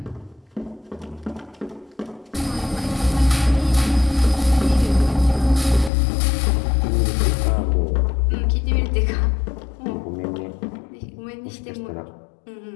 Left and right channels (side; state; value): right; drops out; at 5.9 s